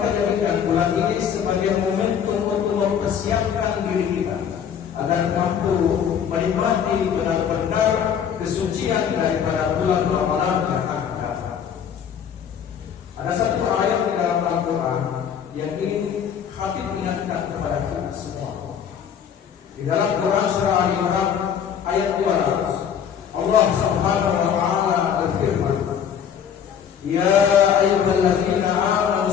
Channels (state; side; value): quieter; right; 8.2 dB